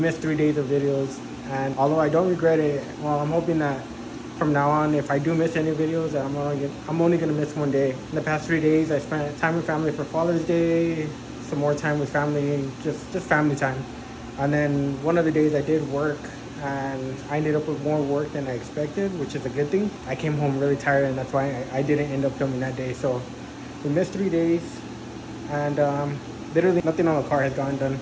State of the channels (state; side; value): identical; both; correlation 1.00